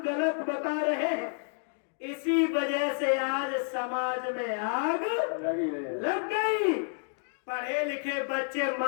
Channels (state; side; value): silent; right; 58 dB below the other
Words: गलत बता रहे हैं। इसी वजह से आज समाज में आग लग गई। पढ़े लिखे बच्चे